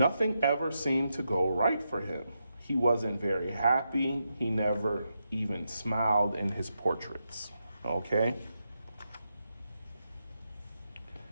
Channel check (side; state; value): both; inverted; correlation -0.85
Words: ever seemed to go right for him. He wasn't very happy. He never even smiled in his portraits. Okay?